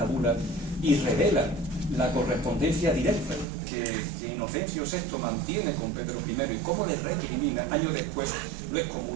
bula, y revela la correspondencia directa que Inocencio VI mantiene con Pedro I y cómo le recrimina, años después lo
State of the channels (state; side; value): drops out; left; at 3.5 s